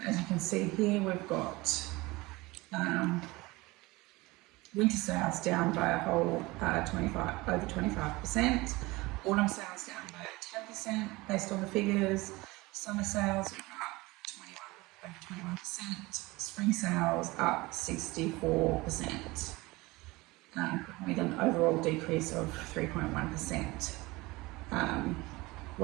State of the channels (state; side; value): quieter; left; 21.8 dB